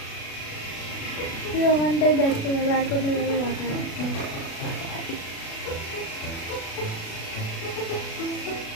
তুই ওখানটাই দেখতে পাবে, আর কোনো জায়গায় রাখা হয়।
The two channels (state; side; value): late; right; 36 ms